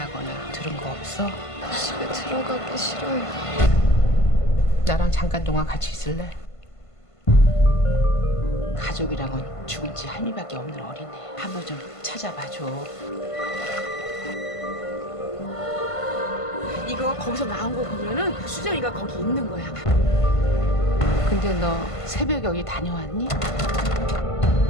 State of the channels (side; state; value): right; late; 1.5 ms